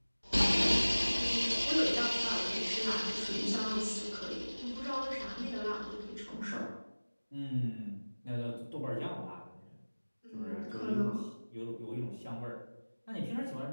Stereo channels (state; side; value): inverted; both; correlation -1.00